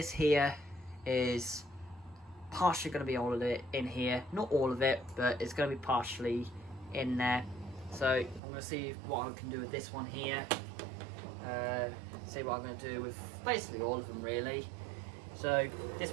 here is partially going to be all of it in here. Not all of it, but it's going to be partially in there. So I'm going to see what I can do with this one here. See what I'm going to do with basically all of them really. So this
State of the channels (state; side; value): drops out; left; at 8.4 s